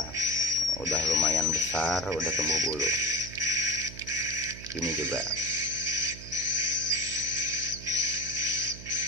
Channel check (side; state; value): right; noise; hum, 13 dB below the sound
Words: lumayan besar, udah tumbuh bulu. Ini juga.